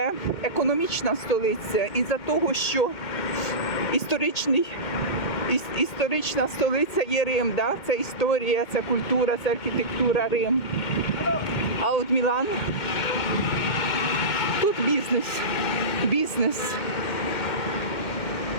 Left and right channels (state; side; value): late; right; 2.1 ms